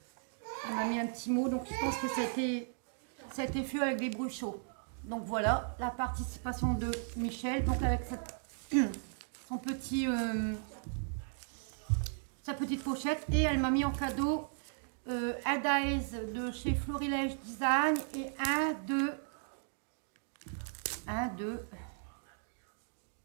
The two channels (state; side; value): silent; left; digital silence